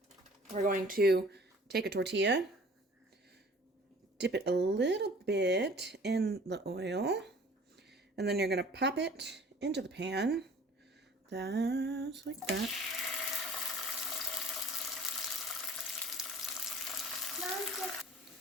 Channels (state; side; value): normal; both; correlation 0.48